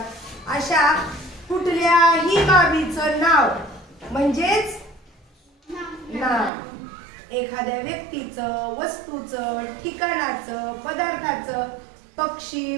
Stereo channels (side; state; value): left; drops out; at 6.5 s